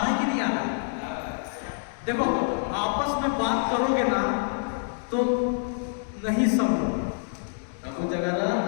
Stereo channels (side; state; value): right; silent; digital silence